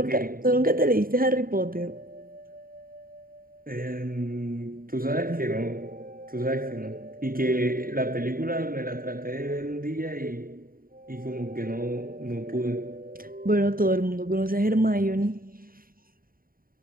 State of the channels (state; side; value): late; left; 0.42 ms